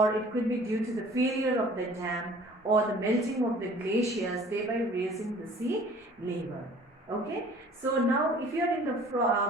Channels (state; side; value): normal; both; correlation 0.50